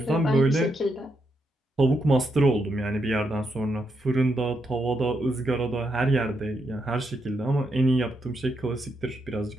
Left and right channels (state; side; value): normal; both; correlation 0.81